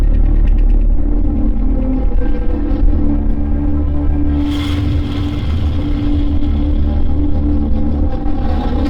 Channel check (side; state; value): both; identical; correlation 1.00